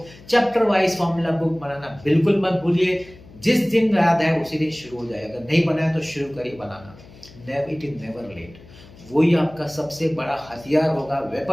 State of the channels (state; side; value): noise; left; hum, 22 dB below the sound